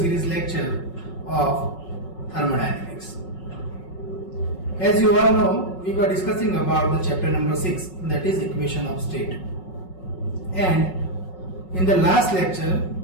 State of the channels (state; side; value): late; right; 5.4 ms